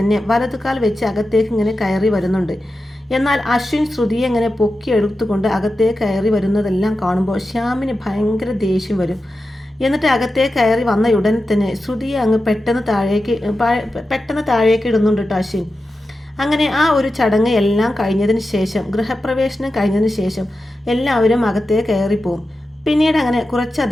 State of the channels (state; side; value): normal; both; correlation 0.91